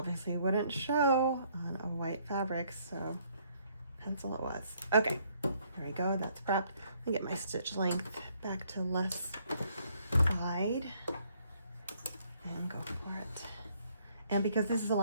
wouldn't show on a white fabric, so pencil it was. Okay, there we go, that's prepped. Let me get my stitch length back to less wide and go for it. And because this is a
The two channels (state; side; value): inverted; both; correlation -0.67